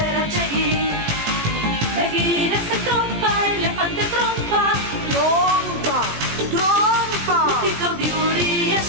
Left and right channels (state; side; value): late; left; 18 ms